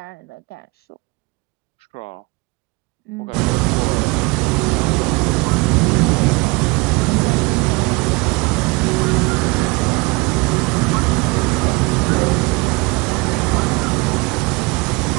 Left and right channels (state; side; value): quieter; left; 26.8 dB